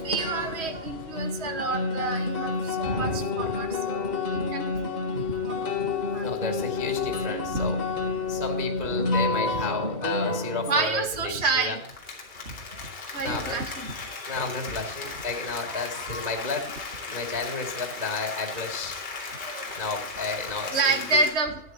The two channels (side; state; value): left; late; 3.1 ms